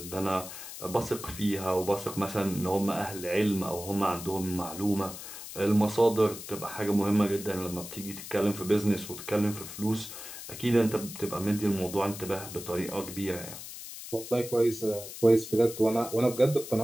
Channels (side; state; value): left; noise; hiss, 11 dB below the sound